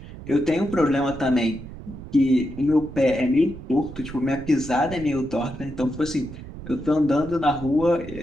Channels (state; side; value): noise; right; rumble, 13 dB below the sound